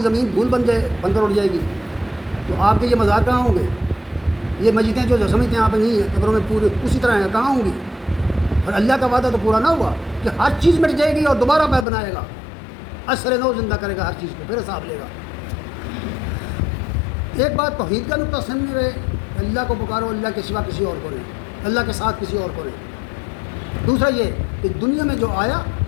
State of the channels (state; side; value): drops out; right; at 11.9 s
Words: زمین دھول بن کر اٹھ جائے گی، تو آپ کے یہ مزار کہاں ہوں گے؟ یہ مسجدیں جو سمجھتے ہیں آپ نہیں ہیں، قبروں میں پورے اسی طرح ہیں، کہاں ہوں گی؟ اور اللہ کا وعدہ تو پورا نہ ہوا کہ ہر چیز مٹ جائے گی اور دوبارہ پہ بنائے گا، عصر نو زندہ کرے گا ہر چیز کو، پھر حساب لے گا۔ ایک بات توحید کا نقطہ سامنے رہے، اللہ کو پکارو، اللہ کے سوا کسی اور کو نہیں، اللہ کے ساتھ کسی اور کو نہیں۔ دوسرا یہ کہ دنیا میں جو آیا